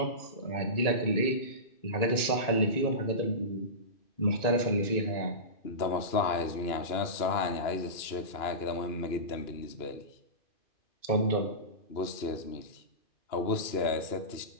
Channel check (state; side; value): late; right; 2.9 ms